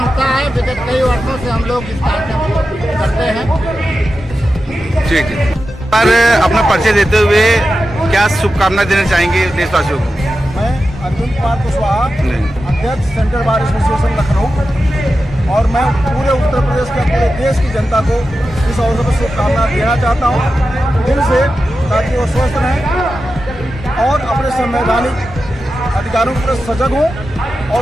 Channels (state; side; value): normal; both; correlation 0.91